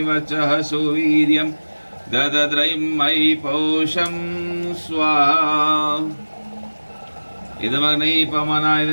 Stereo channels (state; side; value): inverted; both; correlation -1.00